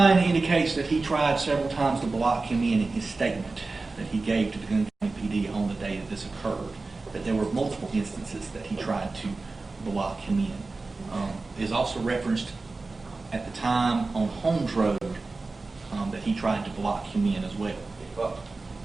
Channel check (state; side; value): quieter; left; 3.6 dB